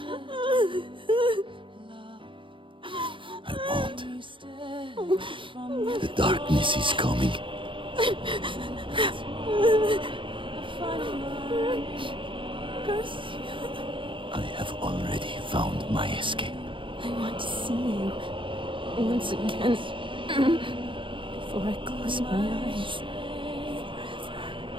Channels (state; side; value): late; left; 0.25 ms